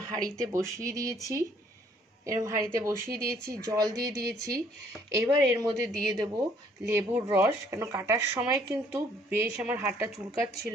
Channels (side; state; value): both; normal; correlation 0.63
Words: হাঁড়িতে বসিয়ে দিয়েছি, জল দিয়ে দিয়েছি। এবার এর মধ্যে দিয়ে দেব লেবুর রস, কেন কাটার সময় কিন্তু বেশ আমার হাতটা